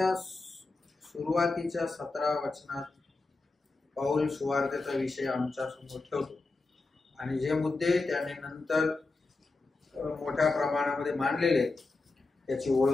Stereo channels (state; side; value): quieter; right; 3.5 dB